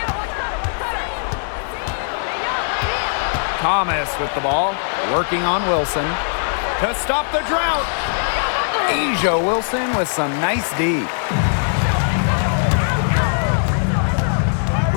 Thomas with the ball, working on Wilson to stop the drought. Asia Wilson with some nice D.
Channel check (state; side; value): silent; right; 66 dB below the other